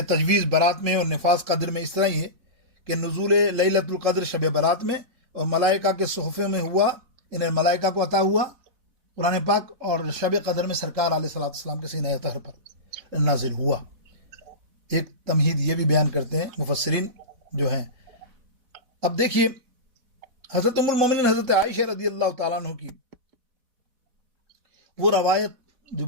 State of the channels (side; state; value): left; late; 4.1 ms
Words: تجویز برات میں اور نفاذ قدر میں اس طرح ہی ہے کہ نزول لیلۃ القدر شب برات میں اور ملائکہ کے صحفے میں ہوا، انہیں ملائکہ کو عطا ہوا قرآن پاک، اور شب قدر میں سرکار علیہ الصلوۃ والسلام کے سینہ طاہر پر نازل ہوا۔ ایک تمہید یہ بھی بیان کرتے ہیں مفسرین جو ہیں۔ اب دیکھیے حضرت ام المومنین حضرت عائشہ رضی اللہ تعالیٰ عنہ کی وہ روایت جو